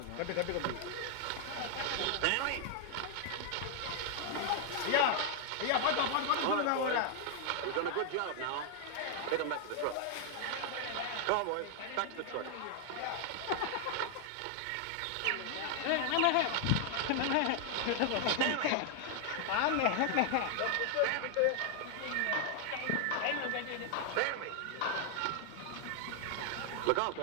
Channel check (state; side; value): different; both; correlation 0.00